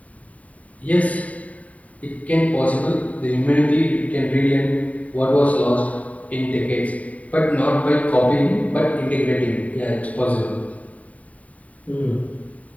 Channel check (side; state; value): right; late; 0.069 ms